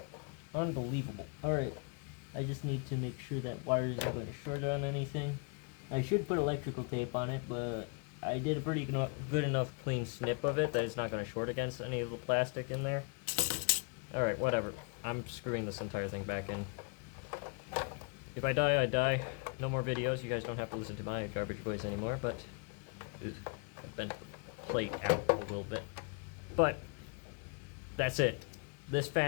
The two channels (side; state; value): right; quieter; 35.1 dB